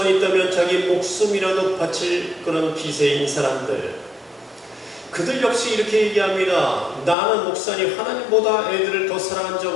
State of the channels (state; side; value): drops out; right; at 7.2 s